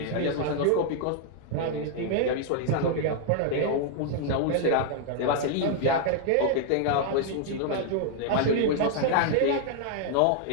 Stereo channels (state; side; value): different; both; correlation 0.00